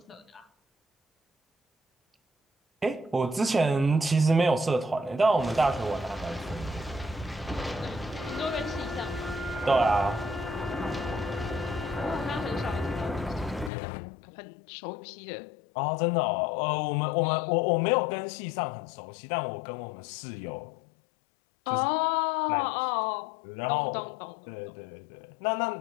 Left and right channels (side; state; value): right; drops out; at 13.7 s